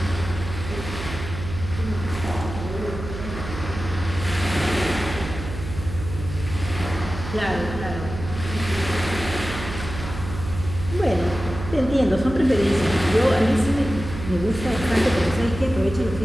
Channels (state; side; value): noise; right; hum, 8 dB below the sound